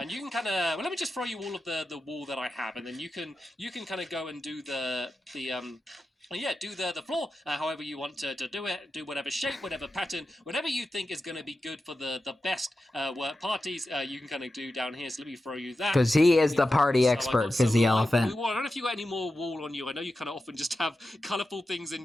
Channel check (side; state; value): both; normal; correlation 0.91